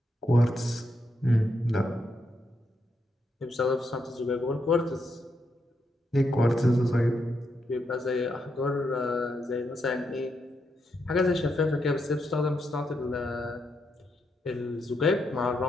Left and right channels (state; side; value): normal; both; correlation 0.81